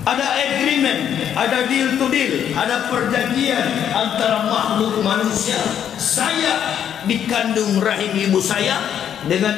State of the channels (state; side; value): quieter; right; 9.3 dB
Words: Ada agreement, ada deal to deal, ada perjanjian antara makhluk manusia. Saya dikandung rahim ibu saya